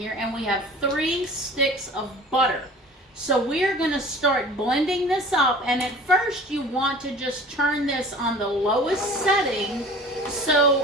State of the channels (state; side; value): normal; both; correlation 0.43